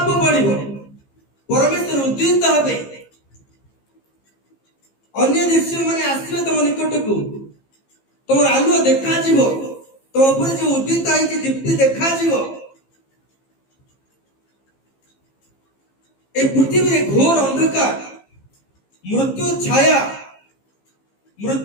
ପଡିବ, ପରମେଶ୍ୱର ଉଦ୍ଦିତ ହେବେ, ଅନ୍ୟ ଦେଶୀୟ ମାନେ ଆସିବେ ତମ ନିକଟକୁ, ତମର ଆଲୁଅ ଦେଖାଯିବ, ତମ ଉପରେ ଯୋଉ ଉଦ୍ଦିତ ହେଇଛି ଦୀପ୍ତି ଦେଖାଯିବ। এই পৃথিবীরে ঘোর অন্ধকার, মৃত্যু ছায়া,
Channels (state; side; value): late; right; 15 ms